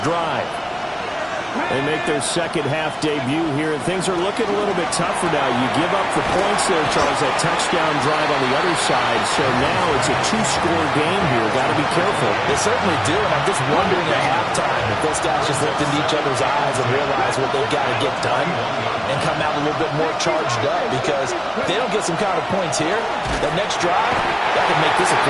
drive. They make their second half debut here, and things are looking a little bit tougher now. You give up the points there, Charles, that touchdown drive on the other side. So now it's a two-score game here. Got to be careful. They certainly do, and I'm just wondering at halftime if those guys just looked into each other's eyes and realize what they've got to get done and come out a little bit more charged up, because if they don't get some kind of points here, that next drive, that could make this a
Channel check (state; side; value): identical; both; correlation 1.00